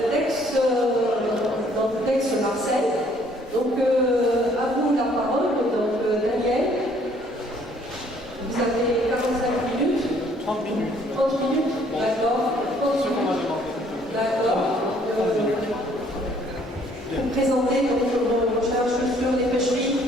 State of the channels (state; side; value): normal; both; correlation 0.62